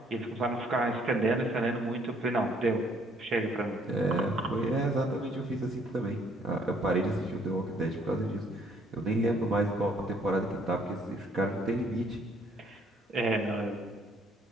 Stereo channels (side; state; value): both; normal; correlation 0.64